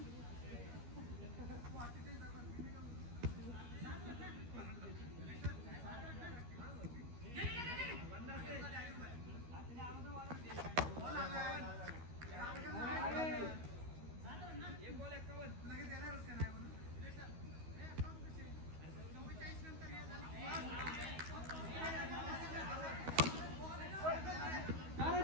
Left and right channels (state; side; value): late; left; 13 ms